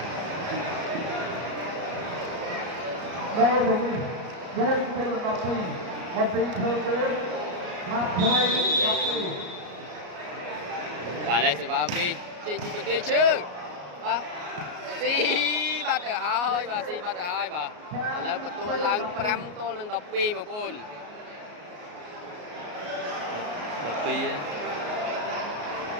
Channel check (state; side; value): late; left; 33 ms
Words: ដល់ទៅវិញ4ទៅ12បន្តិចធ្វើវិញមកថ្មី12បាទឥឡូវសេវាវាចេញពីបន្ទាយឈើបាទស៊ីបាត់ទៅហើយបាទស៊ីបាត់ទៅហើយបាទឥឡូវបន្ទួឡើង5ទល់នឹង12បងប្អូន12